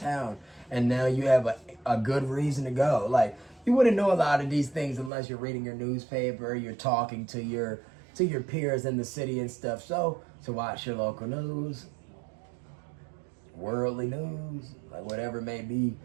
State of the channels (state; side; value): drops out; left; at 5.1 s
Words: and now you have a good reason to go. Like, you wouldn't know a lot of these things unless you're reading your newspaper, you're talking to your peers in the city and stuff. So watch your local news, worldly news, like whatever it may be,